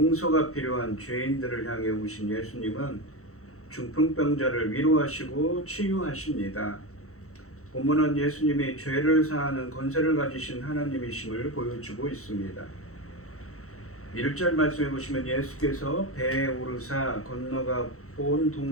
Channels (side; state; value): right; late; 0.64 ms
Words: 필요한 죄인들을 향해 오신 예수님은 중풍병자를 위로하시고 치유하십니다. 본문은 예수님이 죄를 사하는 권세를 가지신 하나님이심을 보여주고 있습니다. 1절 말씀해 보시면 예수께서 배에 오르사 건너가 본